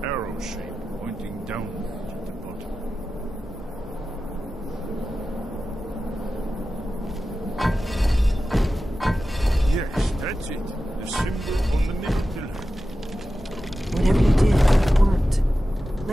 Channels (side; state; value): both; normal; correlation 0.93